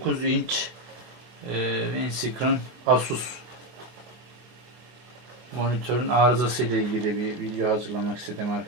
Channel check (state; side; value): late; left; 24 ms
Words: inç Windscreen Asus monitörün arızası ile ilgili bir video hazırlamak istedim